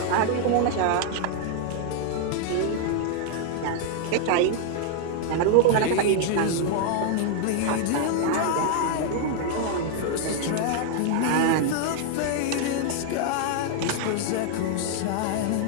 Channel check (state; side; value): different; both; correlation 0.00